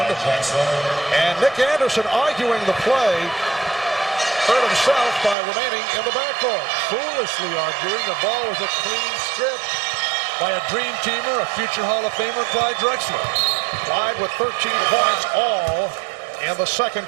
And Nick Anderson arguing the play. Hurt himself by remaining in the backcourt. Foolishly arguing. The ball was a clean strip by a dream teamer, a future Hall of Famer, Clyde Drexler. Clyde with 13 points all in the second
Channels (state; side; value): drops out; left; at 5.4 s